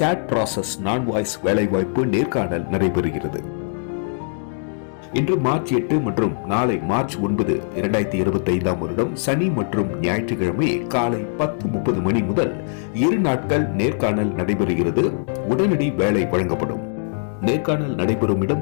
ப்ராசஸ் நான் வாய்ஸ் வேலைவாய்ப்பு நேர்காணல் நடைபெறுகிறது. இன்று மார்ச் 8 மற்றும் நாளை மார்ச் 9, 2025 வருடம் சனி மற்றும் ஞாயிற்றுக்கிழமை காலை 10:30 மணி முதல் 2 நாட்கள் நேர்காணல் நடைபெறுகிறது. உடனடி வேலை வழங்கப்படும். நேர்காணல் நடைபெறும் இடம்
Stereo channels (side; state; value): right; silent; digital silence